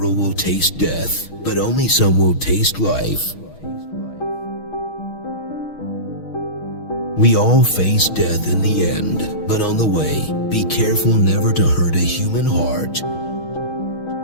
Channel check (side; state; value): right; late; 6.3 ms